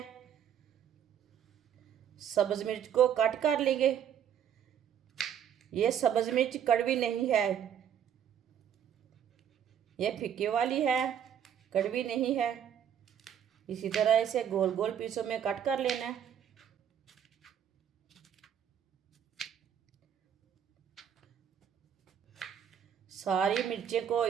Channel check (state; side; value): quieter; left; 9.0 dB